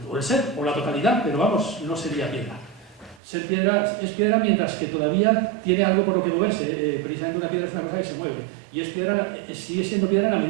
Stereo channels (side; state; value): left; drops out; at 3.2 s